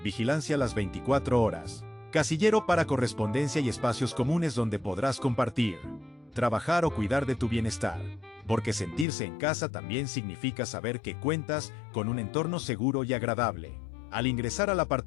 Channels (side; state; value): right; drops out; at 9.1 s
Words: vigilancia las 24 horas, casillero para correspondencia y espacios comunes donde podrás compartir, trabajar o cuidar de tu bienestar. Porque sentirse en casa también significa saber que cuentas con un entorno seguro y agradable. Al ingresar al